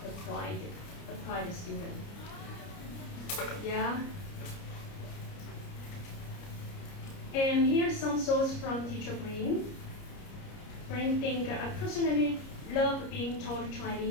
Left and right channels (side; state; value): right; late; 30 ms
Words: the pride student. Yeah. And here's some thoughts from teacher Bryndis. Bryndis think I personally love being taught